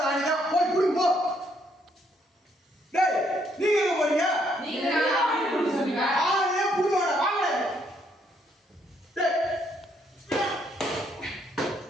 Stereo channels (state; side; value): normal; both; correlation 0.71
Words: ஆணி தான் போய் புடுங்க போ. டேய் நீங்க எங்க போறீங்க? நீங்க ஆணி புடுங்க சொன்னீங்க. ஆணியே புடுங்கடா வாங்க. டேய்